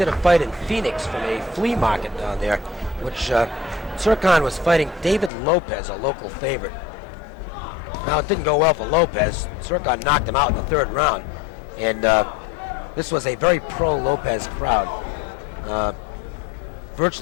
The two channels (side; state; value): right; drops out; at 5.3 s